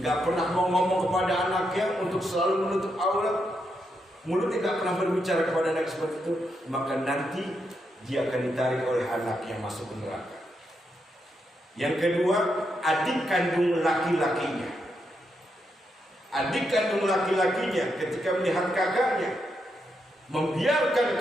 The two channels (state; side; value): normal; both; correlation 0.82